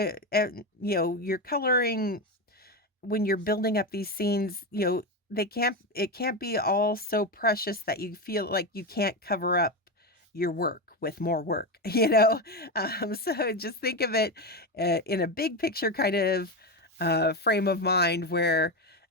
you're coloring when you're building up these scenes, it can't be all so precious that you feel like you can't cover up your work with more work, so just think of it in a big picture kind of frame of mind where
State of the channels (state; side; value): normal; both; correlation 0.14